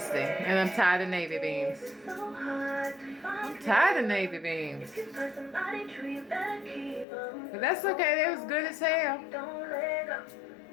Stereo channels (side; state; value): right; drops out; at 7.1 s